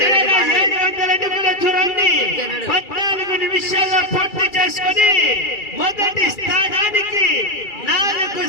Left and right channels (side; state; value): right; late; 2.3 ms